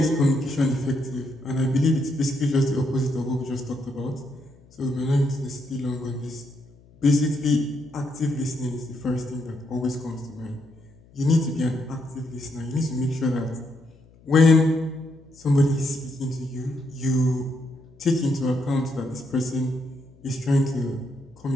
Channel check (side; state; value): left; noise; hum, 27 dB below the sound